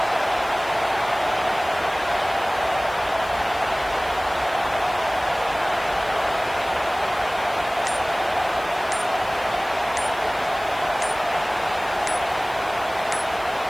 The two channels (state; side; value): noise; left; hiss, 20 dB below the sound